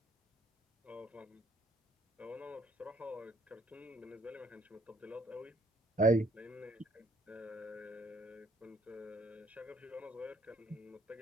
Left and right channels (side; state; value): both; normal; correlation 0.64